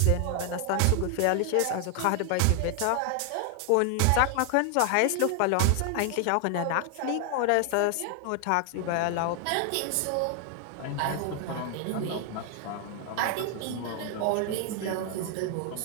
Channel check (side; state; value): both; different; correlation 0.00